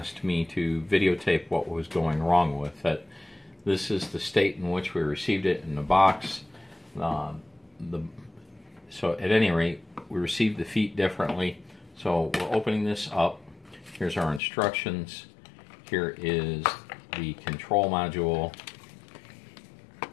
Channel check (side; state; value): right; drops out; at 14.4 s